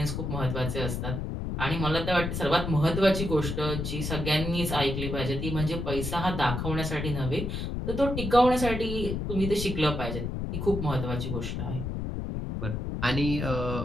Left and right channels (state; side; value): noise; left; rumble, 3 dB below the sound